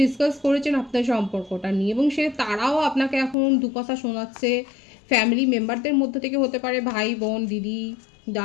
ডিসকাস করেছেন আপনার সম্পর্কটা নিয়ে এবং তারাও আপনাকে এখন দু কথা শোনাচ্ছে। ফ্যামিলি মেম্বারদের মধ্যে থেকে হতে পারে, ভাই বোন, দিদি,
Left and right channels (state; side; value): drops out; right; at 3.4 s